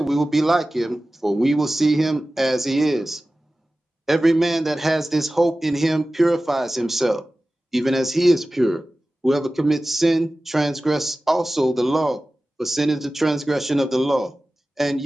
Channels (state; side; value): normal; both; correlation 0.96